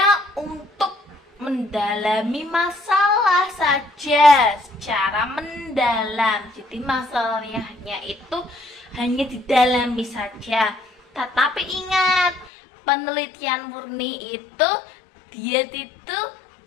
untuk mendalami masalah saja secara mendalam. Jadi masalahnya hanya didalami saja. Tetapi ingat, penelitian murni itu dia itu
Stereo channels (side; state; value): right; drops out; at 12.5 s